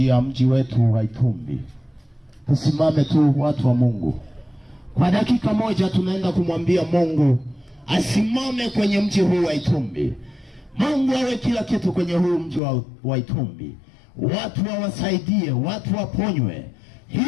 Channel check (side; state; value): right; drops out; at 12.6 s